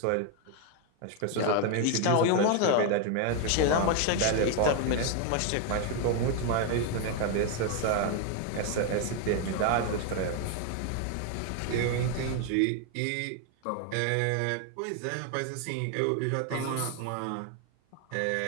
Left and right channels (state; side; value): different; both; correlation 0.01